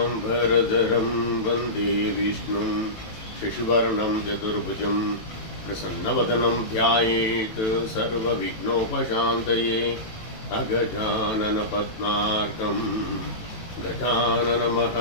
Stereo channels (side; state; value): right; late; 18 ms